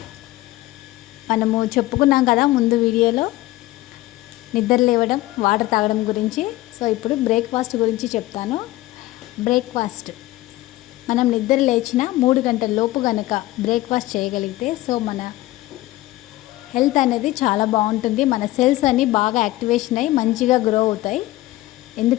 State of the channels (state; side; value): quieter; right; 17.3 dB